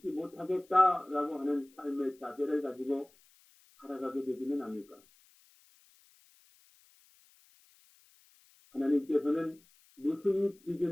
못하겠다라고 하는 삶의 자세를 가지고 살아가게 되지는 않을까. 하나님께서는 무슨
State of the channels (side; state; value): left; noise; hiss, 30 dB below the sound